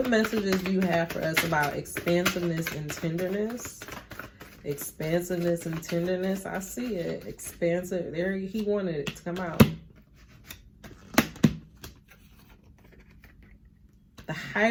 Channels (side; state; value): both; identical; correlation 1.00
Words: messages do you have for us about expansiveness and tenderness? Expansiveness and tenderness. I see it. Expansive. There, he wanted it to come out. The